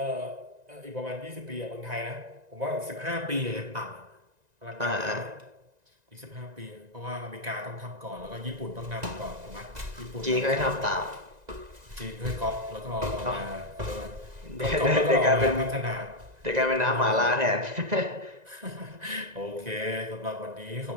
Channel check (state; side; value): late; left; 1.9 ms